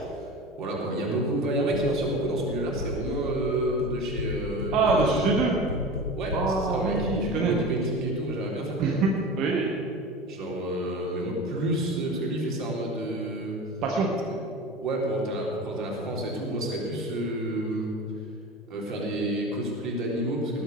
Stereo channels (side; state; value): both; normal; correlation 0.31